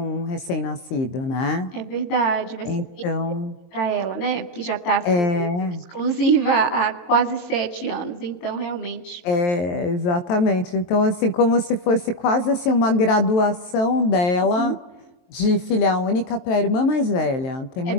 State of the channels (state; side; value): late; right; 22 ms